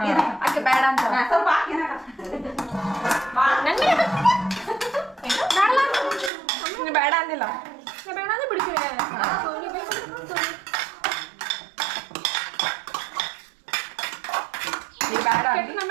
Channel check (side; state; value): left; drops out; at 6.3 s